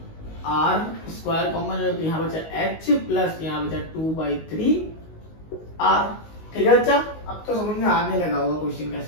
आर स्क्वायर कॉमन है तो यहाँ बचा एच प्लस यहाँ बचा 2/3 आर। ठीक है बच्चा, अब तो समझ में आने लगा होगा क्वेश्चन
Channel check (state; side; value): late; right; 19 ms